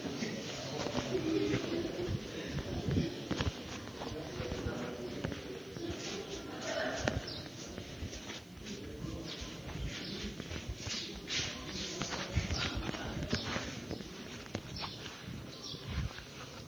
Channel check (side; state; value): right; noise; hiss, 24 dB below the sound